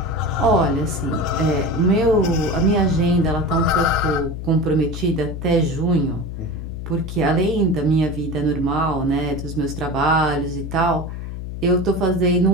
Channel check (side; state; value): left; noise; hum, 7 dB below the sound